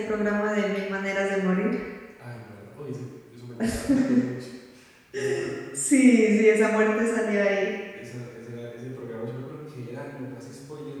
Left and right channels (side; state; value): both; identical; correlation 1.00